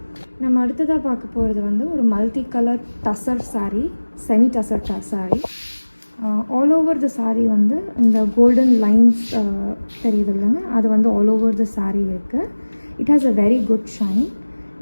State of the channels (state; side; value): inverted; both; correlation -1.00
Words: நம்ம அடுத்ததாக பார்க்க போகிறது வந்து ஒரு multi colour tussar saree, semi tussar saree. All over the saree வந்து இந்த கோல்டன் லைன்ஸ் தெரியுது இல்லைங்க, அது வந்து ஆல் ஓவர் த saree இருக்குது. It has a very good shine.